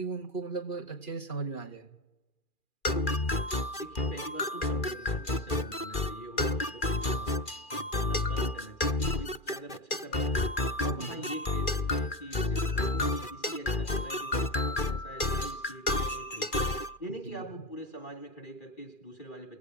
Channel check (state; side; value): late; right; 2.4 ms